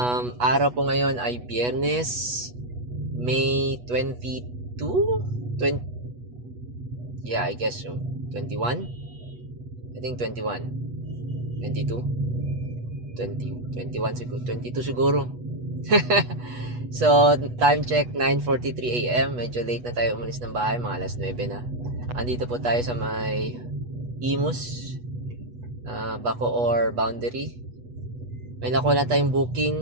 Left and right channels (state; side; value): late; left; 8.2 ms